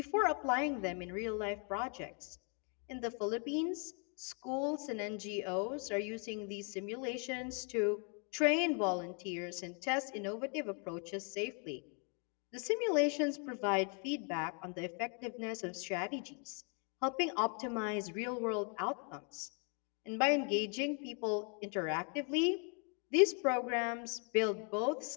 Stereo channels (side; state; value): right; quieter; 38.9 dB